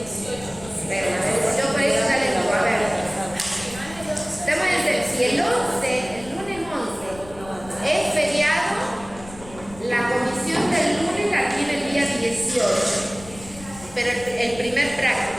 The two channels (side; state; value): left; noise; rumble, 18 dB below the sound